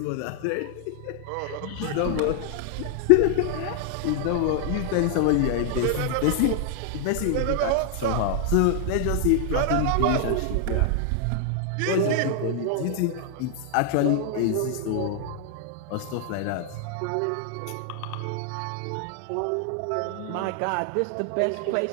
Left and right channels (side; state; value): both; different; correlation 0.00